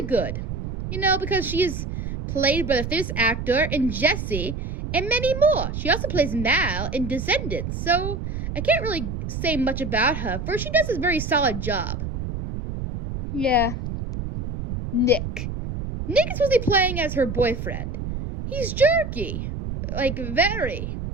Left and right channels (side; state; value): right; noise; rumble, 5 dB below the sound